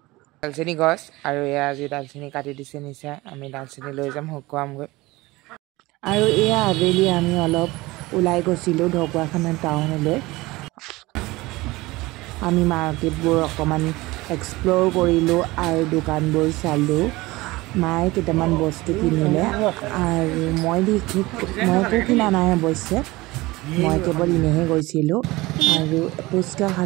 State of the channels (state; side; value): quieter; left; 20.6 dB